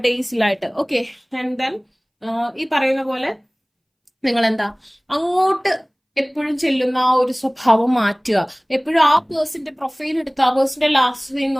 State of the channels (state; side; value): identical; both; correlation 1.00